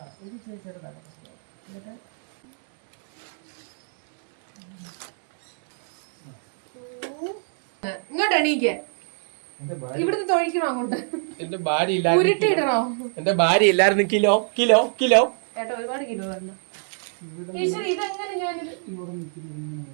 ഇത് ചെറിയ ചെറുതാക്ക. എന്നിട്ട് ഇങ്ങോട്ട് എണീക്ക്. ഇവിടുന്ന് തൊഴിക്കണോ അങ്ങോട്ട്? എന്റെ ഭാര്യ ഉരുട്ടിയിടണോ? എന്റെ ഭാര്യ ഇല്ലായിരുന്നു. കിലോ കിലോ കിലോ ഏട്ടാ ഒരുപാട് കിലോ വരണം. ഈശ്വരി ഇതെങ്ങനെ ഞാനിത്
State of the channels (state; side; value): silent; left; digital silence